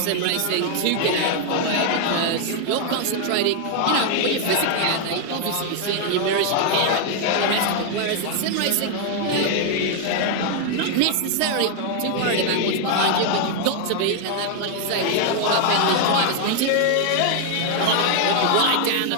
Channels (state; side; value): different; both; correlation 0.00